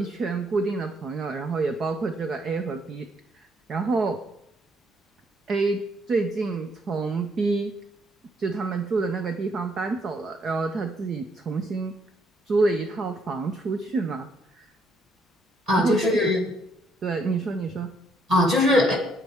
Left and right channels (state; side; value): normal; both; correlation 0.70